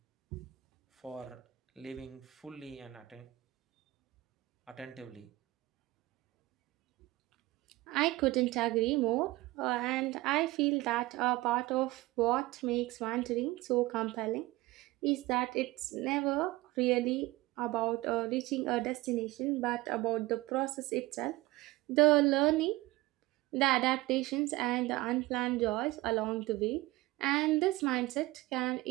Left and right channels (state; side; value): quieter; left; 19.5 dB